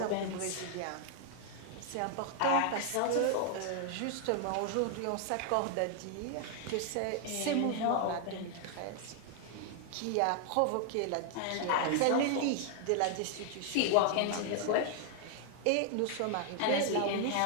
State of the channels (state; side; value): different; both; correlation 0.00